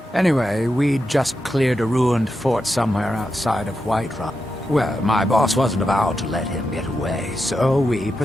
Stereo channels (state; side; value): normal; both; correlation 0.87